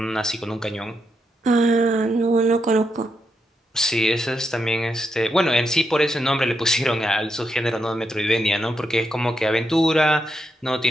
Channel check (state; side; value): normal; both; correlation 0.82